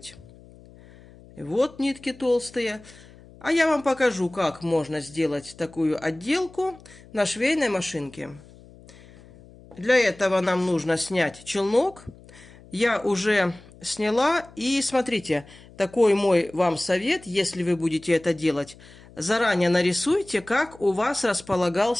Вот нитки толстые. А я вам покажу, как можно сделать такую отделку на швейной машинке. Для этого нам нужно снять челнок. Я уже сняла. И смотрите, такой мой вам совет, если вы будете это делать. Заранее нарисуйте, как у вас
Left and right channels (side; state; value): left; noise; hum, 22 dB below the sound